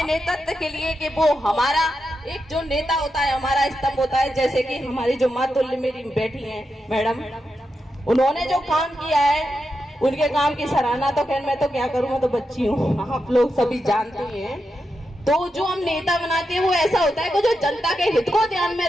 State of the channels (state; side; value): normal; both; correlation 0.87